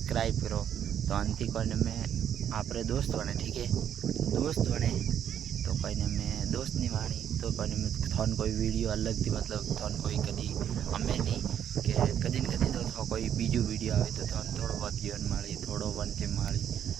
करो, तो अंति कोने में आप दोस्त बने, ठीक है, दोस्त बने तो कोई ने मैं दोस्त नहीं वाणी तो कोई में थोन कोई वीडियो अलग थी, मतलब थोन कोई कदी हमें नहीं कि कदी न कदी तो कोई बीजू वीडियो आए तो थोन थोड़ो बहुत जीवन माड़ी, थोड़ो वनते माड़ी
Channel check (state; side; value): quieter; left; 9.5 dB